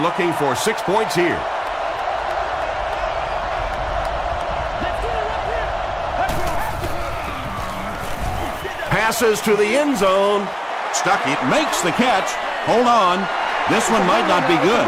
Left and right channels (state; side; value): identical; both; correlation 1.00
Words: for 6 points here. Passes to the end zone. Stuckey makes the catch. Hold on. This one might not be good.